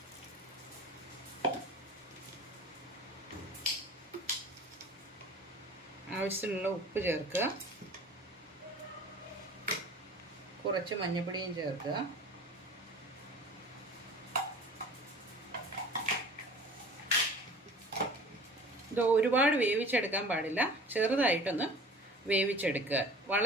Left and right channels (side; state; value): both; normal; correlation 0.43